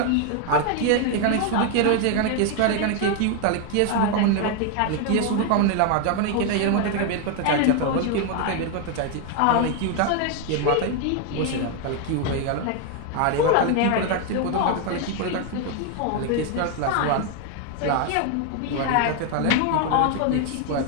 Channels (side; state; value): both; different; correlation 0.01